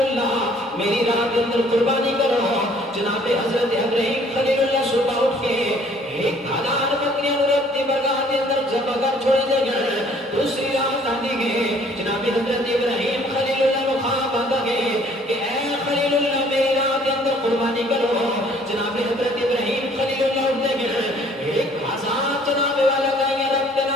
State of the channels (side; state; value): both; normal; correlation 0.58